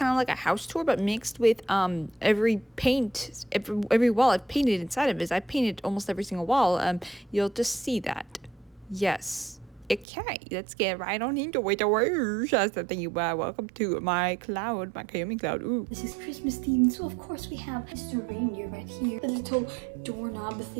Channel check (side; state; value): left; drops out; at 10.1 s